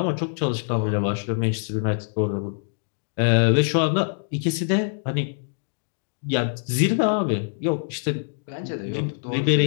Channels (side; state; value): right; silent; digital silence